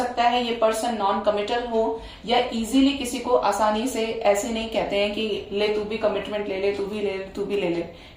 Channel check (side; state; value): both; identical; correlation 1.00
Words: है ये पर्सन नॉन कमिटल हो या इजीली किसी को आसानी से ऐसे नहीं कहते हैं कि ले तू भी कमिटमेंट ले ले, तू भी ले ले, तू भी ले ले,